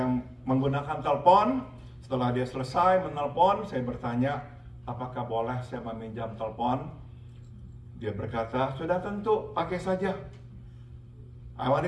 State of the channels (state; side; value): identical; both; correlation 1.00